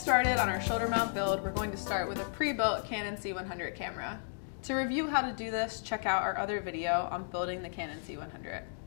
on our shoulder mount build, we're going to start with a pre-built Canon C100 camera. To review how to do this, check out our other video on building the Canon C100.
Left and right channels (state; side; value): silent; right; digital silence